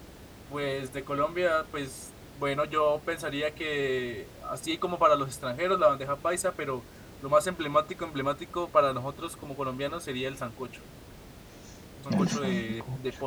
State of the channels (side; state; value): both; identical; correlation 1.00